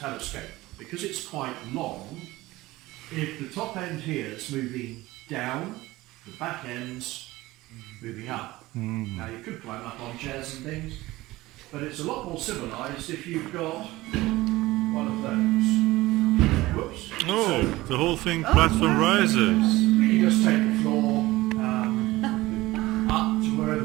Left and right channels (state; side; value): quieter; left; 18.6 dB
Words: telescope. Because it's quite long, if the top end here is moving down, the back end's moving up. Now you could climb up on chairs and things, but it's a lot more civilised if you've got one of those. Whoops. Oh, the whole thing platform rises. You just take the floor,